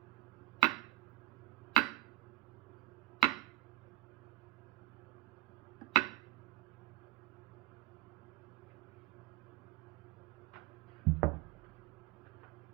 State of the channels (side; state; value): left; quieter; 22.2 dB